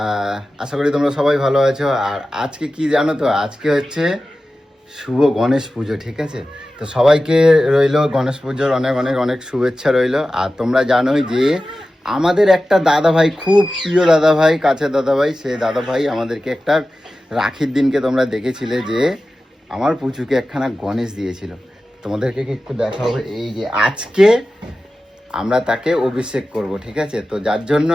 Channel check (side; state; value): both; normal; correlation 0.94